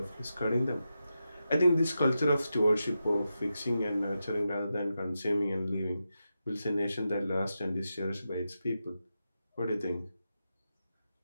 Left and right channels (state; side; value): inverted; both; correlation -0.89